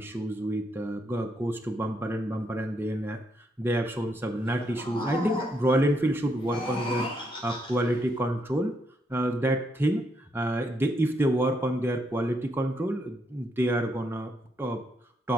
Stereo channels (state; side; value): normal; both; correlation 0.77